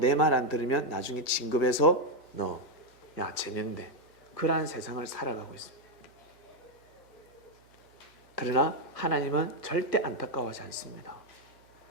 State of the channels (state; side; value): normal; both; correlation 0.03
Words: 말 안 들으면 나중에 진급해서 야 쟤는데 그러한 세상을 살아가고 있습니다. 그러나 하나님은 절대 안타까워하지 않습니다.